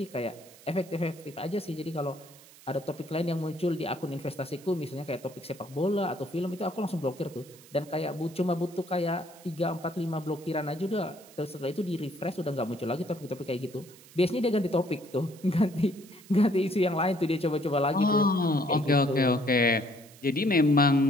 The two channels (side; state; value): right; noise; hiss, 22 dB below the sound